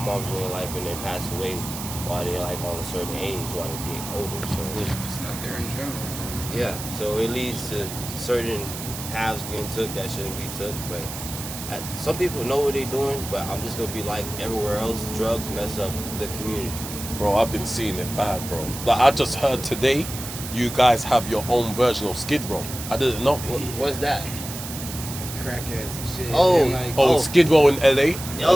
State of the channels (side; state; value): right; noise; hiss, 9 dB below the sound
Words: moms in their life and they pass away while they're like on a certain age, while they get older. So just not there in general. Yeah, so it leads to certain paths getting took that shouldn't be took. But some people know what they're doing, but I'm just gonna be like everywhere else. Drugs mess up the community. Bro, I've been seeing it bad, bro. Like I just heard today, you guys have your own version of Skid Row. I didn't know. What's that? Crackheads and shit. Skid Row in LA.